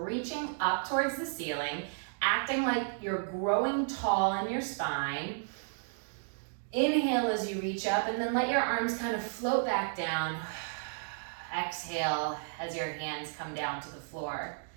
up towards the ceiling, acting like you're growing tall in your spine. Inhale as you reach up, and then let your arms kind of float back down. Exhale as your hands come down to the floor.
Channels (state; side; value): silent; left; digital silence